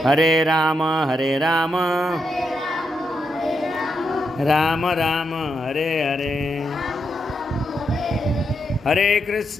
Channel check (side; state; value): both; normal; correlation 0.82